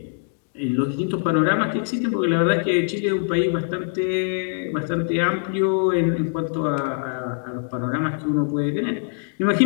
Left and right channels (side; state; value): right; silent; digital silence